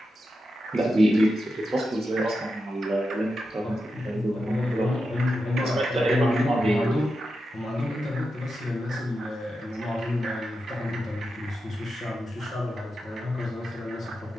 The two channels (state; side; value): normal; both; correlation 0.89